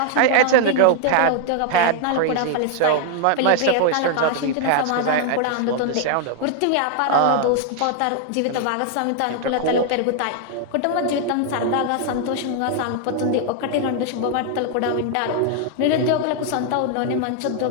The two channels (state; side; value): different; both; correlation 0.00